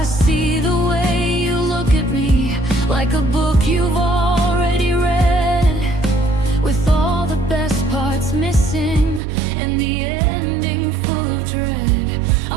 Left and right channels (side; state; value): left; drops out; at 9.2 s